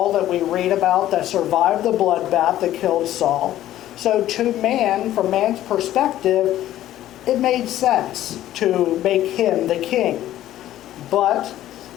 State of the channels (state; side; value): quieter; right; 13.3 dB